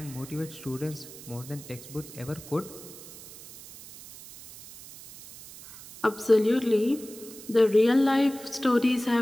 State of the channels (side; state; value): right; noise; hiss, 16 dB below the sound